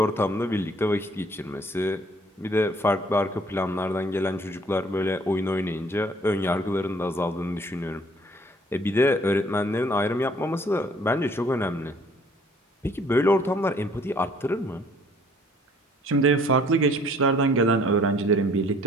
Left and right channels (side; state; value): both; normal; correlation 0.58